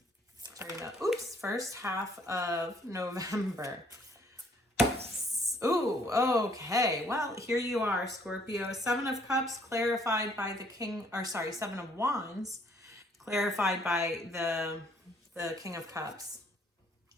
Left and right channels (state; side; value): normal; both; correlation 0.64